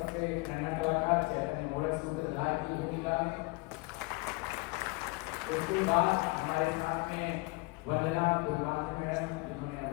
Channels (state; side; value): quieter; right; 25.8 dB